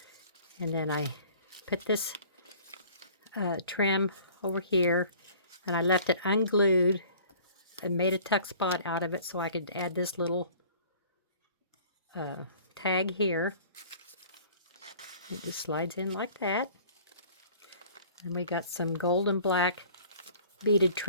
And then I put this trim over here. And I left it unglued. I made a tuck spot out of it so I could add this little tag here. It just slides in like that. And we got some gold and black beaded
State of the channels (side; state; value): both; inverted; correlation -0.50